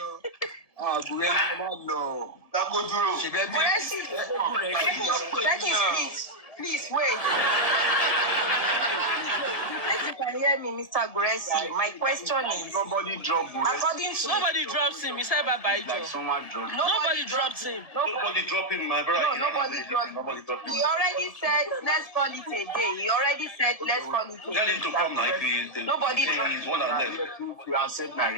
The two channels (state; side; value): late; right; 1.7 ms